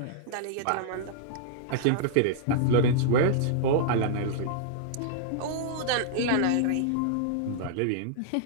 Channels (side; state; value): both; different; correlation -0.02